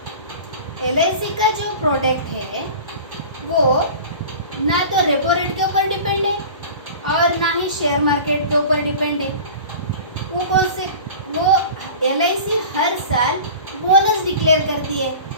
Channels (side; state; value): both; inverted; correlation -0.38